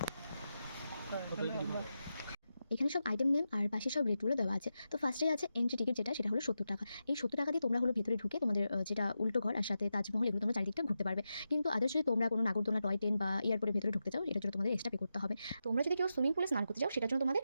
এখানে সব আইটেম নেম আর পাশে সব রেটগুলো দেওয়া আছে। তো ফার্স্টেই আছে এন্ট্রি টিকিট, সেটা হলো 70 টাকা। এই 70 টাকা দিয়ে তোমরা হলো ভিতরে ঢুকে তোমাদের যেটা উল্টো ঘর আর সাথে তাজমহল, এগুলো তোমরা চারিদিকটা ঘুরতে পারবে। কিন্তু আদার্স যদি তোমরা কোনো নাগরদোলনা, টয় ট্রেন বা এয়ারপোর্টের ভেতরে ঢুকতে চাও, এটার জন্য তোমাদের এক্সট্রা পে করতে হবে। তোমরা যদি কেউ সুইমিং পুলে স্নান করতে চাও, সেটার জন্য তোমাদের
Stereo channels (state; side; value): inverted; both; correlation -0.89